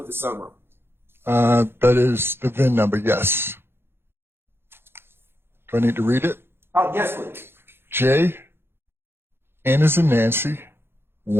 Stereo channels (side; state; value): left; late; 0.11 ms